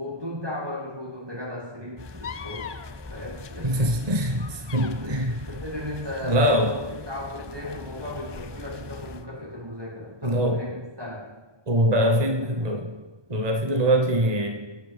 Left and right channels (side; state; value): left; late; 1.2 ms